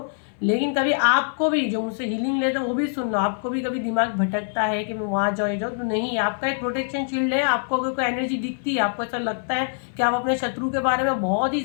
लेकिन कभी आपको भी, जो मुझसे हीलिंग लेते हैं, वो भी सुन लो, आपको भी कभी दिमाग भटकता है कि मैं वहाँ जाऊँ तो नहीं, आपका एक प्रोटेक्शन शील्ड है। आपको अगर कोई एनर्जी दिखती है, आपको ऐसा लगता है कि आप अपने शत्रु के बारे में बहुत ही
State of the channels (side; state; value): right; silent; 63 dB below the other